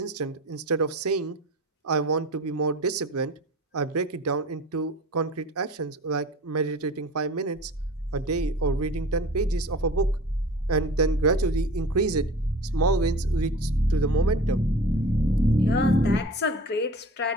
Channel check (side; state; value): both; normal; correlation 0.39